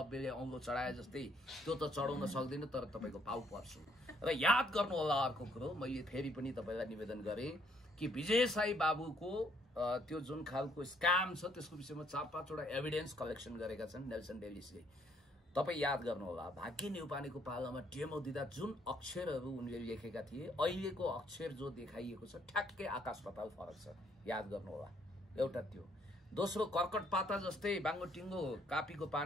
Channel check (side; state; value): both; normal; correlation 0.68